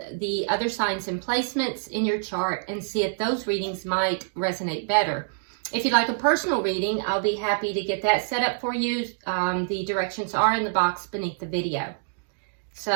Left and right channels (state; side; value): silent; left; digital silence